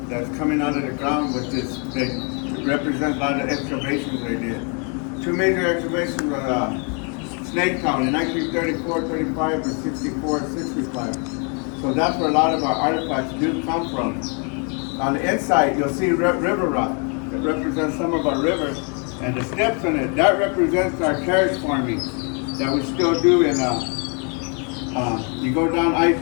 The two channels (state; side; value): quieter; right; 37.3 dB